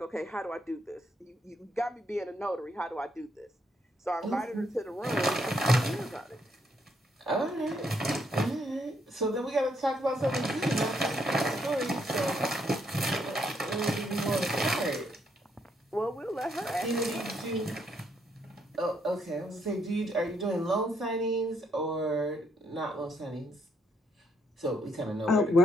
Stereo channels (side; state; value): both; normal; correlation 0.74